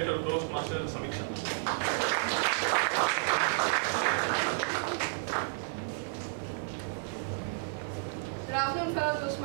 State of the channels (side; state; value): left; silent; digital silence